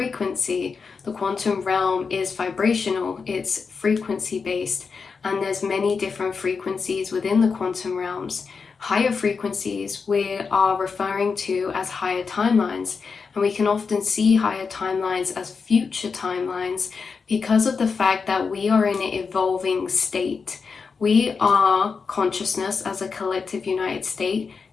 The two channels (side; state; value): right; quieter; 5.2 dB